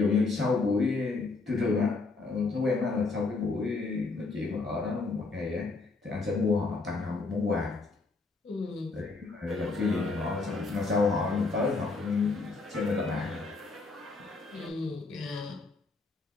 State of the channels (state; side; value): quieter; right; 3.8 dB